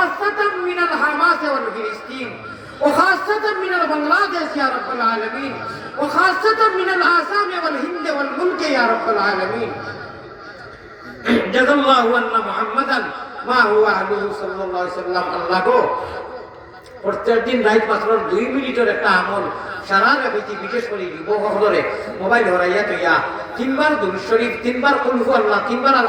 মিনাল হামাস ওয়াল ফিলিস্তিন وخاصة من بنغلاديش يا رب العالمين وخاصة من الآسام والهند والملك يا رب العالمين جزا الله أن محمدا ما هو أهله صلى الله عليه وسلم الله को প্রত্যেক দিন রাত মাত্র 2 মিনিটের একটা আমল সারা রাতে বিশেষ করে যুবকসকলে মোবাইল হরাইয়া তৈয়া 3 বার দুরূদ শরীফ 3 বার কুল হু আল্লাহ 3 বার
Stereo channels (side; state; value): both; identical; correlation 1.00